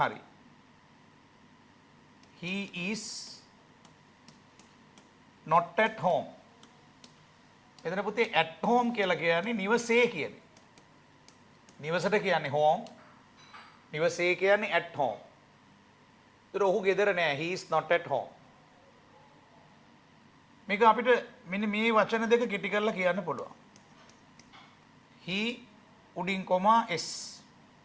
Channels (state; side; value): identical; both; correlation 1.00